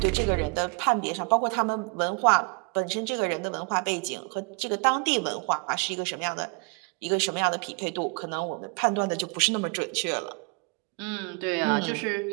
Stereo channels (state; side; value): quieter; left; 33.3 dB